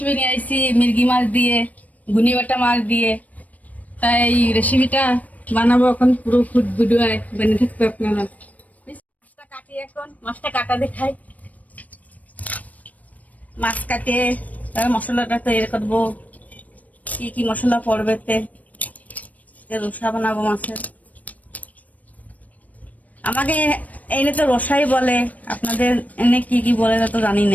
নিয়ে আসছি মির্গি মাছ দিয়ে, গুনি বাটা মাছ দিয়ে। তাই এই রেসিপিটা বানাবো, এখন পুরো ফুড ভিডিও বেনে থাকবে আপনারা। মাছটা কাটি, এখন মাছটা কাটা দেখাই। মাছ কাটে তার মশলাটা তৈরি করবো। কি কি মশলা পড়বে রসা বানাবো মাছের। আমাকে এনে তো রসাই বলে, আপনাদের এনে কি কি বলে তা তো জানি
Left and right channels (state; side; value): late; right; 0.072 ms